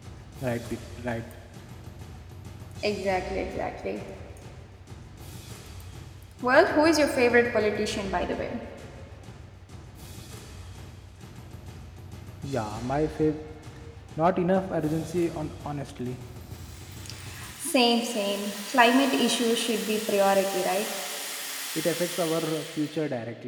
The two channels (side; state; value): both; identical; correlation 1.00